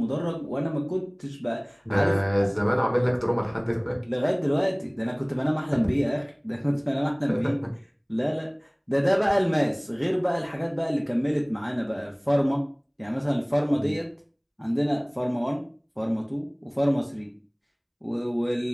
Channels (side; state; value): both; identical; correlation 1.00